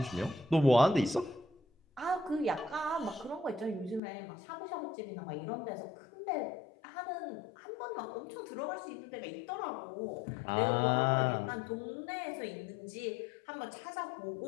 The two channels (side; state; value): right; drops out; at 4.0 s